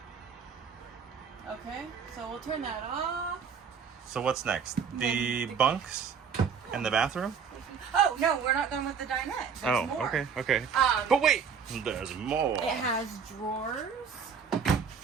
Okay, so we'll turn that off. So what's next? The bunks and the bathroom? Oh, no, we're not done with the dinette. There's more. Okay. But wait, there's more. It has drawers.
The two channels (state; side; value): quieter; left; 6.5 dB